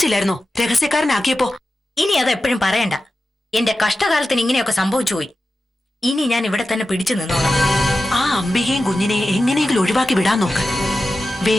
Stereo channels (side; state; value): both; normal; correlation 0.93